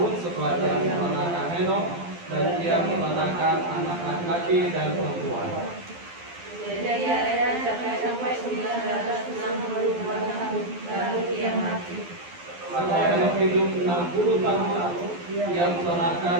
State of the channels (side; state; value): left; late; 12 ms